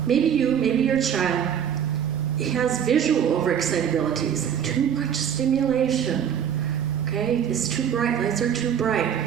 Maybe you, maybe your child has visual overexcitabilities, too much stimulation. Okay, it's too bright, lights are too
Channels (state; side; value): quieter; left; 8.7 dB